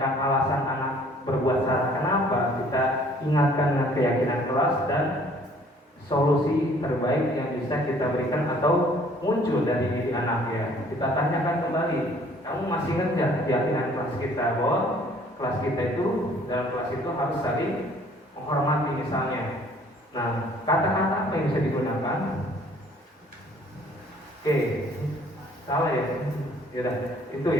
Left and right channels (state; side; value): normal; both; correlation 0.57